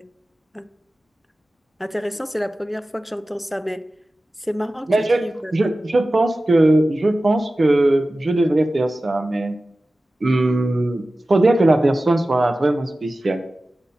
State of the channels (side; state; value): both; normal; correlation 0.96